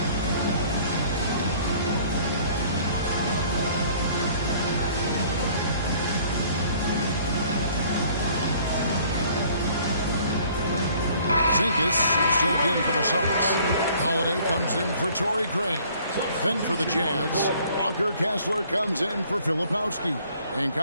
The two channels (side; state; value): both; inverted; correlation -0.56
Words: Zinkas is checked in for the Celtics. Holiday comes in for Torrey Craig. Then for the Jazz, Walker Kessler comes in for Filipowski. And